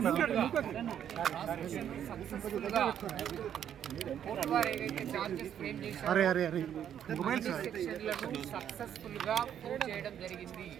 సక్సెస్ఫుల్ గా ప్రూవ్ చేయడం జరిగింది.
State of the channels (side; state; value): left; quieter; 9.6 dB